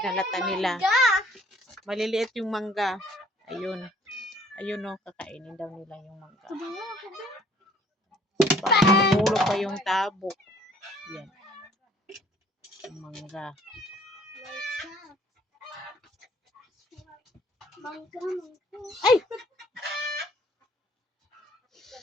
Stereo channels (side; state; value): both; normal; correlation 0.58